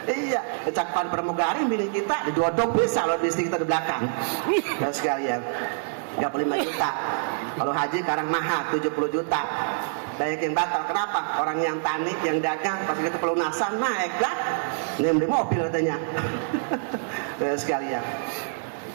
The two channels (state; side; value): silent; left; 61 dB below the other